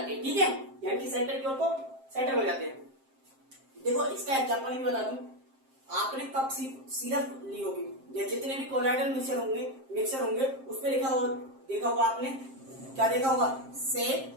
हैं। ठीक है, यानी कि सेंटर की ओर को सेटल हो जाते हैं। देखो इसका एग्जांपल भी बता दूं, आपने कप सिरप ली होगी या जितने भी कोलाइडल मिक्सचर होंगे उस पे लिखा हो, देखा होगा आपने, क्या देखा होगा, सेट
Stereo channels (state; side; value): late; left; 7.6 ms